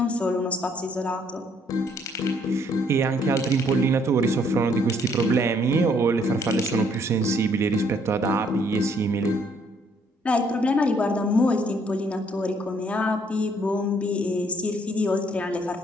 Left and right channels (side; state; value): both; normal; correlation 0.66